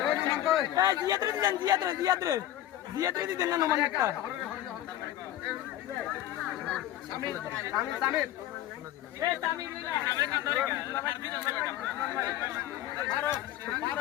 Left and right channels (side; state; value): right; quieter; 13.1 dB